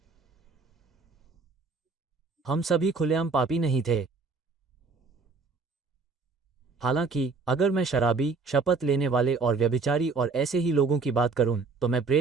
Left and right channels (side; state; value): left; quieter; 4.3 dB